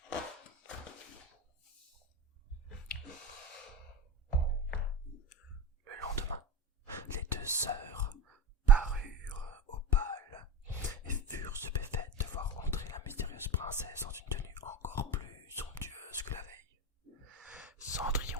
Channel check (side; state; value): both; normal; correlation 0.24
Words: Le lendemain, les deux sœurs parurent au bal et furent stupéfaites de voir entrer la mystérieuse princesse dans une tenue encore plus somptueuse que la veille.